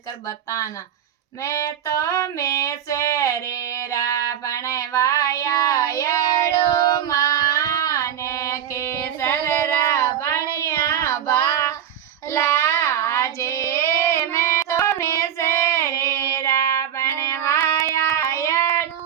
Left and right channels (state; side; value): quieter; left; 9.8 dB